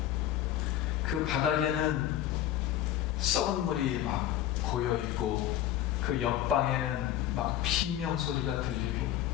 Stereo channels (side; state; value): right; quieter; 12.3 dB